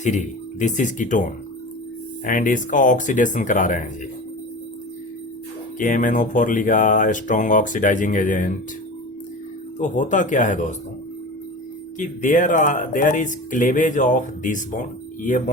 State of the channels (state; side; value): normal; both; correlation 0.32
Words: this is ketone and इसका ऑक्सीडेशन करा रहे हैं जी। KMnO4 लिखा स्ट्रॉन्ग ऑक्सीडाइजिंग एजेंट। तो होता क्या है दोस्तों कि there is cleavage of this bond, ये